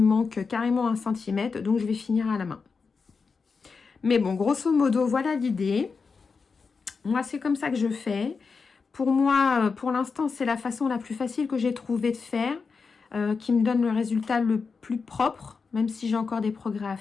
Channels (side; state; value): right; quieter; 5.0 dB